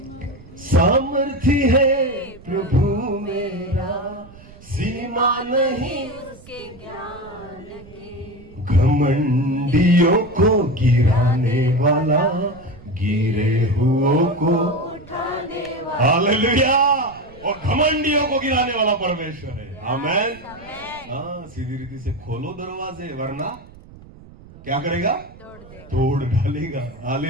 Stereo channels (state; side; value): noise; right; rumble, 21 dB below the sound